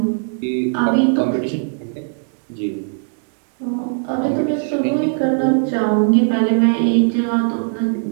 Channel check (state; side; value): silent; left; digital silence